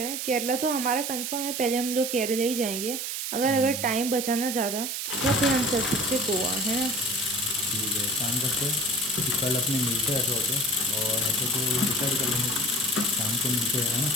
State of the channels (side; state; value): right; noise; hiss, 3 dB below the sound